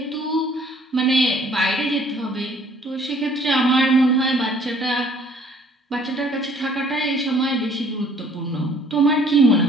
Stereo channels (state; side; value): normal; both; correlation 0.58